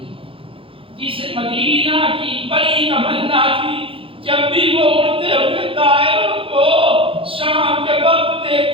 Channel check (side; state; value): left; late; 0.26 ms